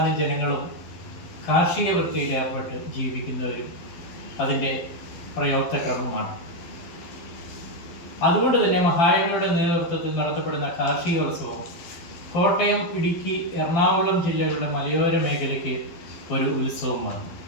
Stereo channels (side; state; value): right; late; 12 ms